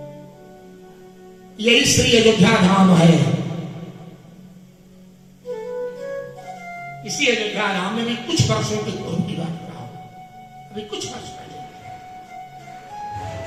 यही श्री अयोध्या धाम है। इसी अयोध्या धाम में भी कुछ वर्षों के पूर्व की बात कर रहा हूं, अभी कुछ वर्ष पहले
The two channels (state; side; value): identical; both; correlation 1.00